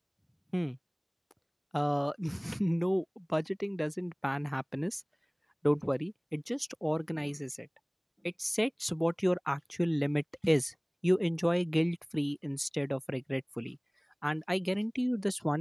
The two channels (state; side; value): identical; both; correlation 1.00